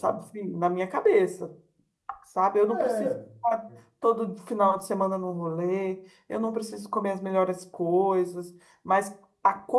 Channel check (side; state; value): both; identical; correlation 1.00